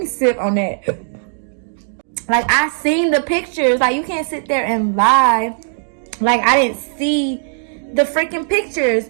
sip on that. Like, I seen the pictures. Like, you can't sit there and lie like I didn't see the freaking pictures.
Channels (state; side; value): silent; left; digital silence